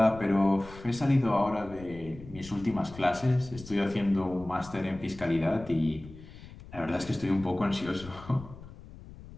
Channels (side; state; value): left; noise; rumble, 17 dB below the sound